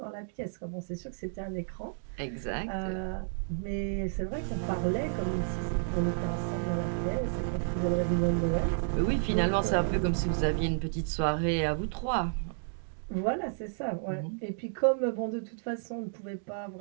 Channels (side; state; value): left; silent; digital silence